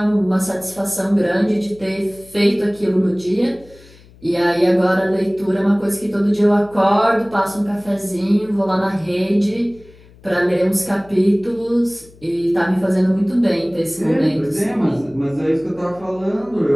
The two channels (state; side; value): noise; left; hum, 25 dB below the sound